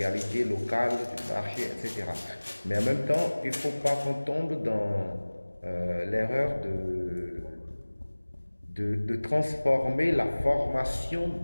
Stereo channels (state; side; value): inverted; both; correlation -1.00